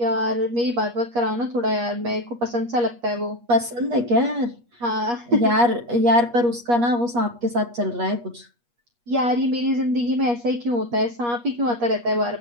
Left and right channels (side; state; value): left; late; 8.4 ms